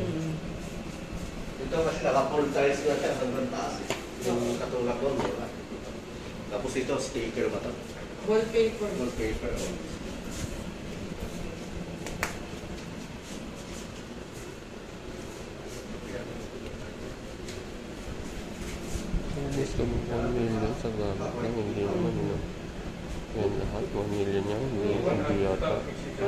Ito kasi naka-full size na siya sa taas eh. Yung katulad doon, wala. Tapos ito, sticker ba ito? Wallpaper. Wallpaper. Alis kami 1 million sa gamit lang, hindi naman yun. Yan lahat, 1 million yan, hindi yata.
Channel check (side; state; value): both; identical; correlation 1.00